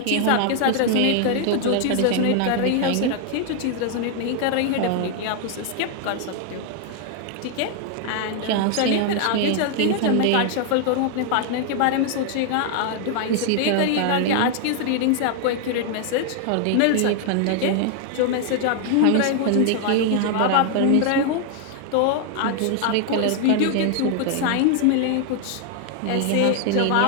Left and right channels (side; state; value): both; different; correlation 0.00